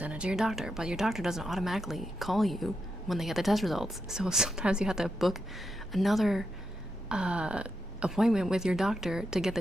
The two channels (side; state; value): both; normal; correlation 0.85